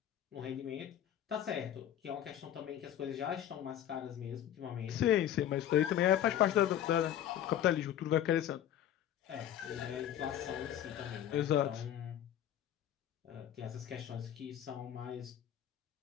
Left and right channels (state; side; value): quieter; right; 11.0 dB